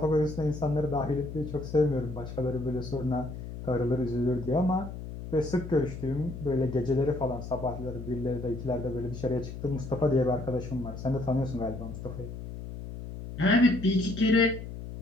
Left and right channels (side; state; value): left; noise; hum, 9 dB below the sound